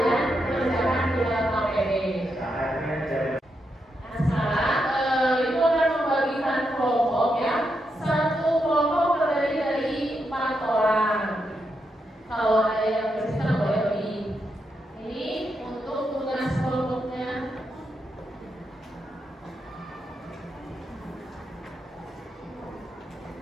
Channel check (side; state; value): both; normal; correlation 0.83